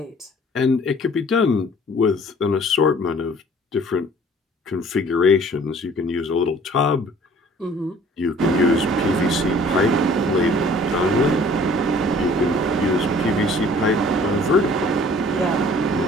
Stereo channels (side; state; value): both; normal; correlation 0.53